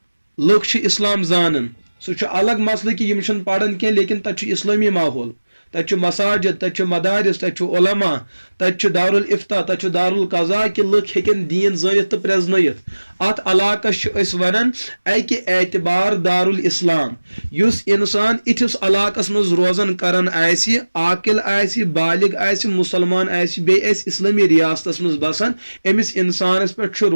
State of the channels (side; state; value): both; inverted; correlation -1.00